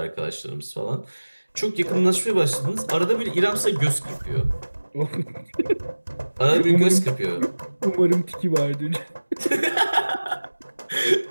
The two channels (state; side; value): inverted; both; correlation -1.00